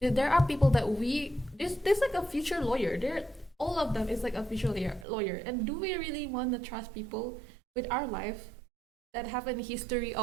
are people that there's like a future lawyer. All of them is like a future lawyer. And do we really want to trust people with our life that have a history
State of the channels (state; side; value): drops out; left; at 5.1 s